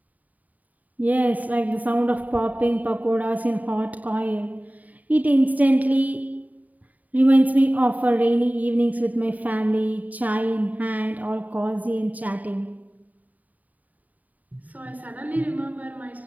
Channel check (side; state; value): left; late; 0.076 ms